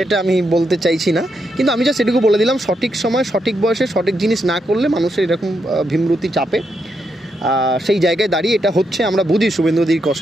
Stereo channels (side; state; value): both; normal; correlation 0.81